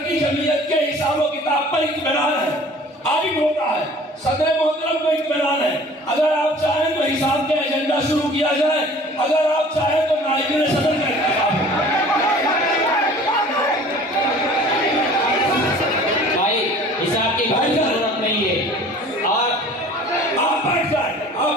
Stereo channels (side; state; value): both; normal; correlation 0.47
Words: की जमीयत के हिसाब किताब पर इत्मीनान है, आइन होता है, सदर मोहतरम को इत्मीनान है। अगर आप चाहें तो हिसाब के एजेंडा शुरू किया जाए, अगर आप चाहें तो नायब सदर का इंतखाब। भाई हिसाब की कोई जरूरत नहीं है और आप बैठ जाए।